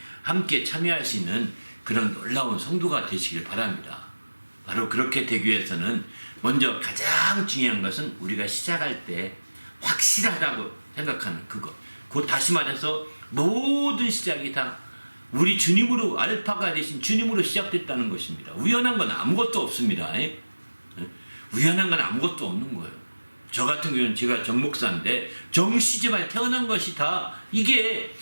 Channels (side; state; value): both; inverted; correlation -1.00